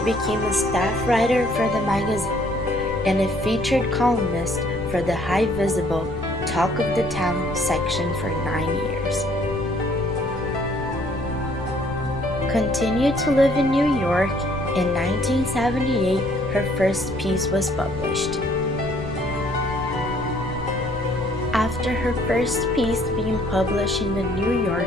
became a staff writer for the magazine and a featured columnist for the high-visible Talk of the Town section for 9 years. Continued to live in New York, in 1978 her first piece was published. After her first piece being published in the New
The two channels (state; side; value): noise; left; rumble, 11 dB below the sound